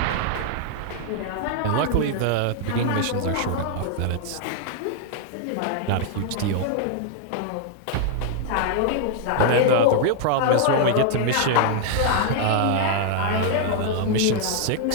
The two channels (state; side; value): different; both; correlation 0.00